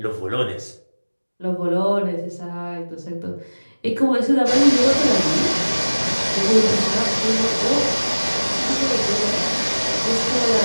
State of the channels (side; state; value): both; inverted; correlation -1.00